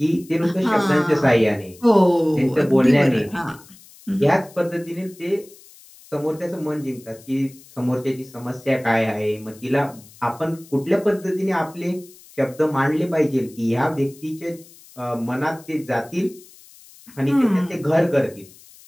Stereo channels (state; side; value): noise; left; hiss, 23 dB below the sound